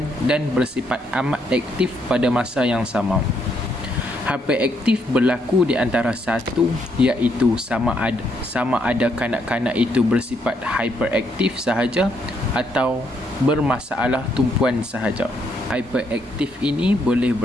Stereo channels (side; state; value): both; normal; correlation 0.74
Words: dan bersifat amat aktif pada masa yang sama. Hyperaktif berlaku di antara satu, iaitu sama ada kanak-kanak itu bersifat hyperaktif sahaja atau bermasalah tumpuan sahaja. Hyperaktif ini boleh